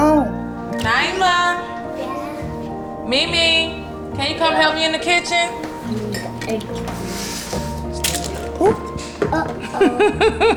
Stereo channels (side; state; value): both; identical; correlation 1.00